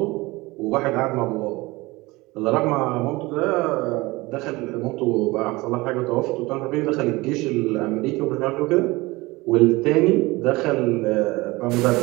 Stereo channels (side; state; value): left; quieter; 21.8 dB